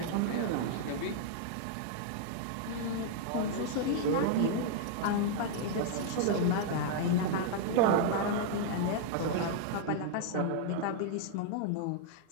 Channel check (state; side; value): different; both; correlation -0.01